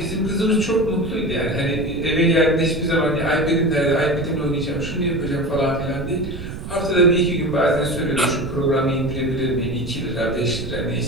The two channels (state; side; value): noise; right; rumble, 9 dB below the sound